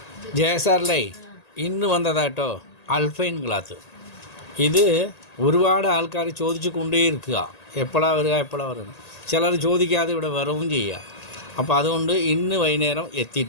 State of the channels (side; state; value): right; late; 1.8 ms